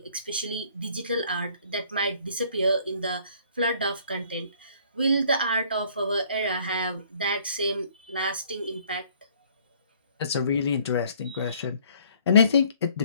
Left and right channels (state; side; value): inverted; both; correlation -0.60